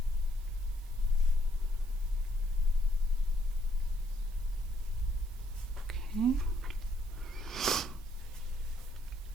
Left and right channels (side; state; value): both; normal; correlation 0.70